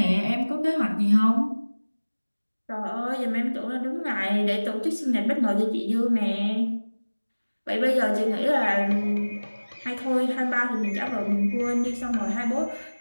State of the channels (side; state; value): both; inverted; correlation -1.00